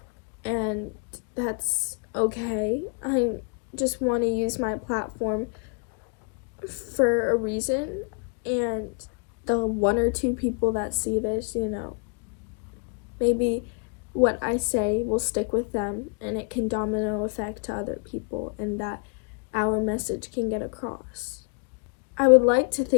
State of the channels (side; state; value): right; quieter; 39.6 dB